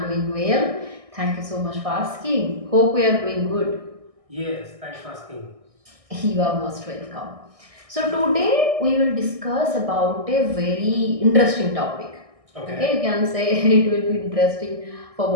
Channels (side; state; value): left; late; 1.6 ms